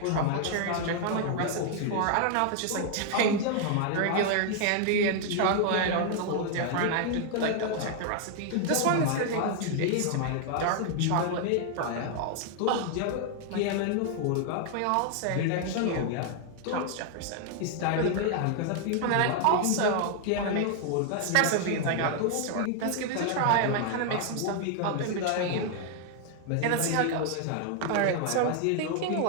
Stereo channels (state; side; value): different; both; correlation 0.00